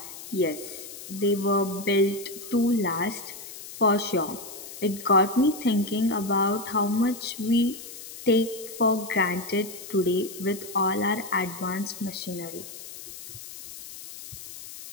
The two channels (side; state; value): left; noise; hiss, 13 dB below the sound